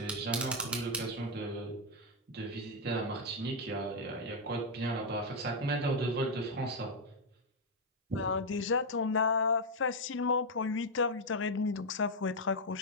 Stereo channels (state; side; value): normal; both; correlation 0.01